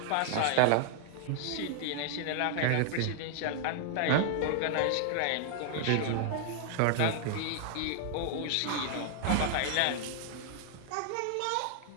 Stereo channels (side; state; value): both; different; correlation -0.01